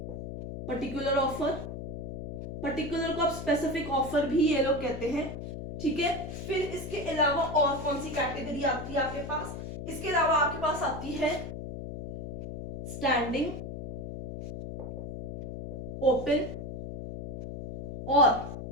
पर्टिकुलर ऑफर, पर्टिकुलर को आप स्पेसिफिक ऑफर भी ये लोग कहते हैं, ठीक है। फिर इसके अलावा और कौन सी कैटेगरी आती है आपके पास? इसके अलावा आपके पास आती है स्टैंडिंग, ओपन और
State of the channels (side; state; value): left; noise; hum, 7 dB below the sound